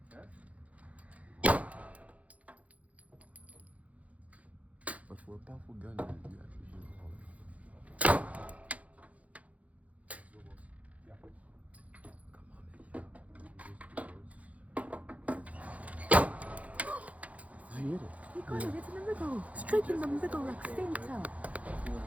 Okay. But for a powerful gun, you actually use all of it. Yeah. Come on, man. You hit it. You got it, it's in the middle. Straight in the middle, like center.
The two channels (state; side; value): late; left; 0.068 ms